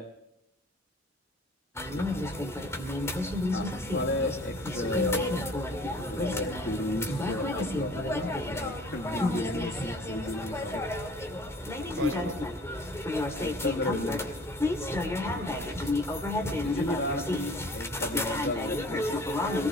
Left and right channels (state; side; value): normal; both; correlation 0.50